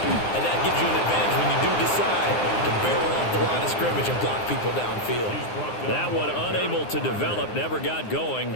and that gives you an advantage when you do decide to barrel off the line of scrimmage and block people downfield. That one unable to develop, never got going.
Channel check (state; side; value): late; right; 9.7 ms